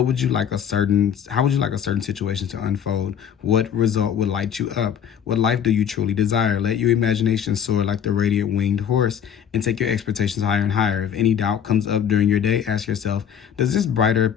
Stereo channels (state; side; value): quieter; right; 8.4 dB